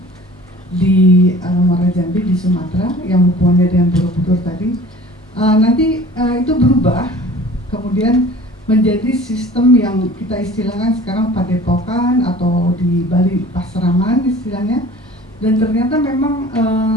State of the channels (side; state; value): both; normal; correlation 0.45